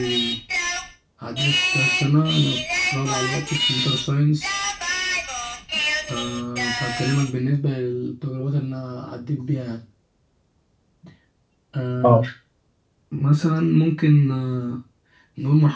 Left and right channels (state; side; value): identical; both; correlation 1.00